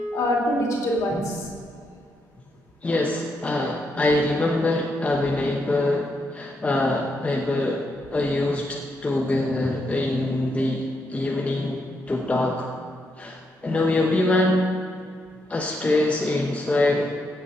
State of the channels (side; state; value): both; normal; correlation 0.80